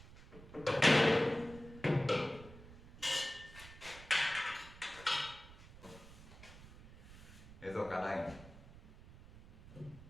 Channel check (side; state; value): right; noise; rumble, 18 dB below the sound